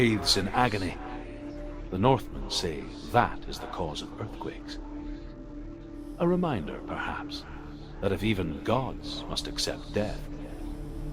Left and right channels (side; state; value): both; identical; correlation 1.00